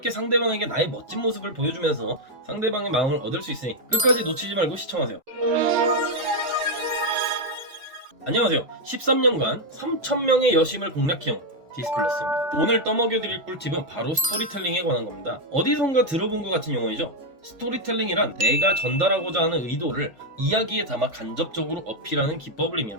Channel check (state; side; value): late; left; 3.5 ms